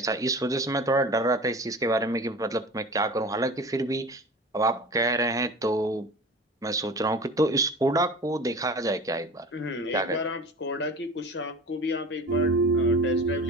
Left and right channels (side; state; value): both; normal; correlation 0.37